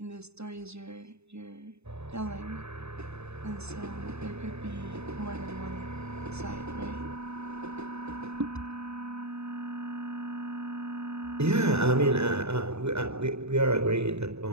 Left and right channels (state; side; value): late; left; 0.80 ms